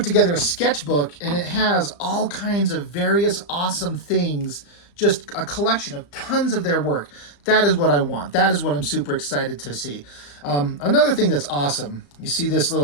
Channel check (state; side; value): late; right; 35 ms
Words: together a sketchbook, and it has all kinds of various awesome things, just a collection of tons of their work. That is what I want. That is what I'm super excited to see. Another thing that's awesome, you see this